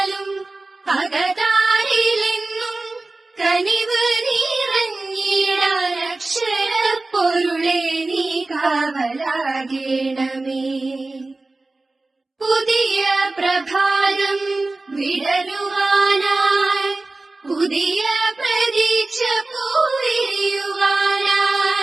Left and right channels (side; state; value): left; quieter; 3.2 dB